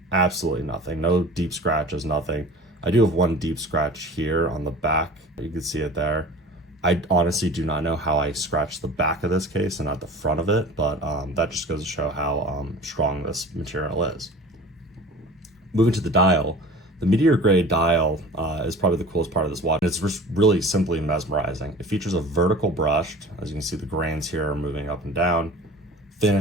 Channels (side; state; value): both; normal; correlation 0.41